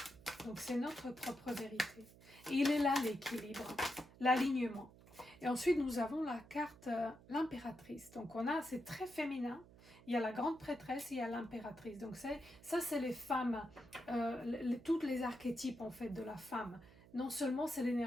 Donc c'est notre propre vérité. Et il est là l'équilibre, l'alignement. Et ensuite nous avons la carte l'impératrice. Donc c'est très féminin. Il y a la grande prêtresse, il y a l'impératrice. Donc ça c'est les femmes, toutes les archétypes en fait de la femme. Non seulement c'est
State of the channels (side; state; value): right; noise; hum, 22 dB below the sound